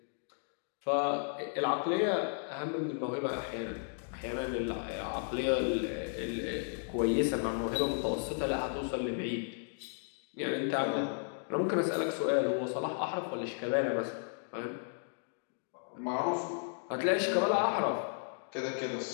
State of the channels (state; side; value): silent; right; 55 dB below the other